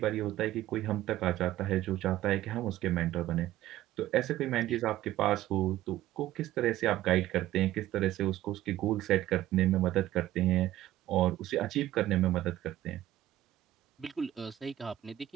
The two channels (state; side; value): quieter; left; 14.4 dB